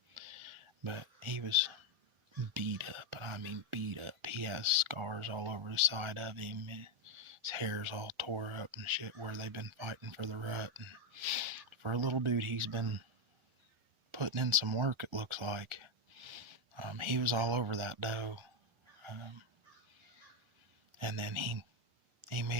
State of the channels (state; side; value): late; left; 1.4 ms